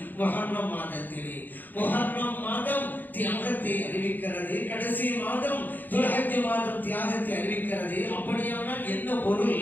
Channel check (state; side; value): late; right; 0.087 ms